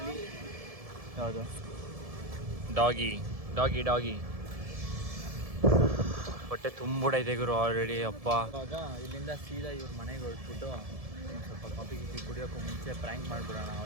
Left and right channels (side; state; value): left; late; 1.7 ms